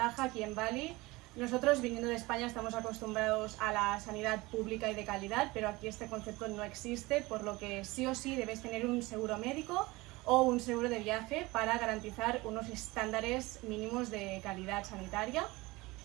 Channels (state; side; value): quieter; left; 21.7 dB